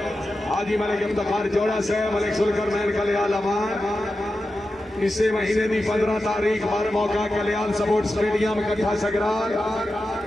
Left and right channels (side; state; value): both; normal; correlation 0.91